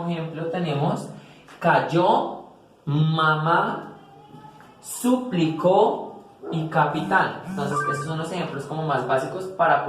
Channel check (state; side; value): identical; both; correlation 1.00